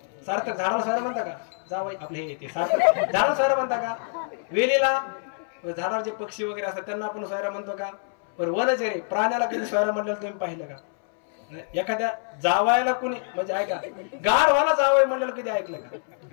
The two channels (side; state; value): right; silent; 61 dB below the other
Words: सार्थक झाडाला सोयरा म्हणता का. जावई आपले हे येते सार्थक झाडाला सोयरा म्हणता का. वेलीला झाडावर जे पक्षी वगैरे असतात त्यांना आपण सोयरा म्हणतो का. पण वनचरे प्राण्याला कधी सोयरा म्हटलं तुम्ही पाहिलं का. एखाद्या जावायला कुणी म्हणजे ऐका गाढवाला जावई म्हणलेलं कधी ऐकलं का.